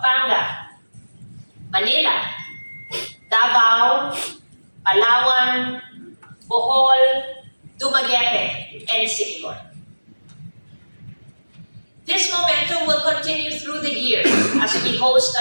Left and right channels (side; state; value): both; inverted; correlation -1.00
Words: Manila, Davao, Palawan, Bohol, Dumaguete, and Cebu. This momentum will continue through the year as we host